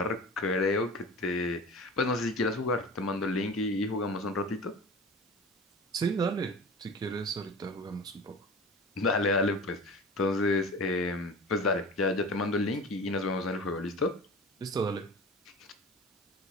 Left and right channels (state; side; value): normal; both; correlation 0.36